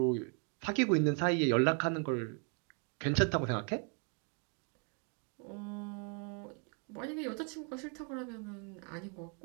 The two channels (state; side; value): quieter; left; 39.9 dB